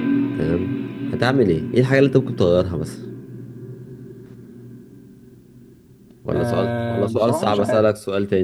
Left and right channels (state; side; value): identical; both; correlation 1.00